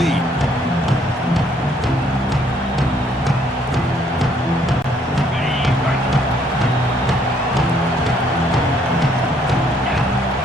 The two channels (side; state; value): both; normal; correlation 0.66